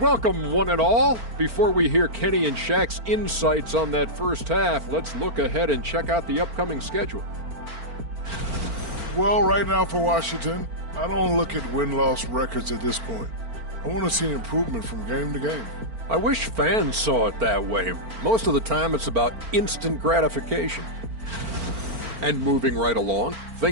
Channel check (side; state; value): left; late; 4.4 ms